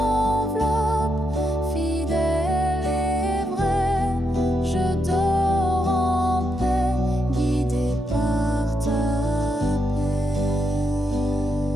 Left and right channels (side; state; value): both; normal; correlation 0.81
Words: fidèle et vraie. Je dors en paix, guidée par ta paix.